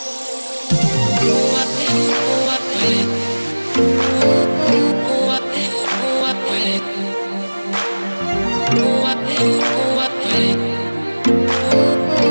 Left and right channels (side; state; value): both; inverted; correlation -1.00